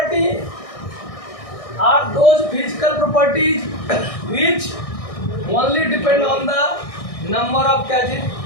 are those physical properties which only depend on the number of क्या चीज,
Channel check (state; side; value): late; right; 1.6 ms